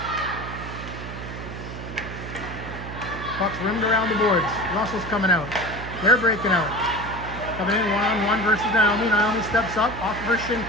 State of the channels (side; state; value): right; noise; hum, 9 dB below the sound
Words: Puck's rimmed around the boards. Russell's coming out. They're breaking out. Coming in one-on-one versus Naomi. Naomi steps up off of her shin